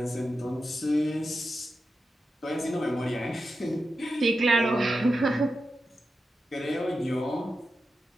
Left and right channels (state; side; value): normal; both; correlation 0.90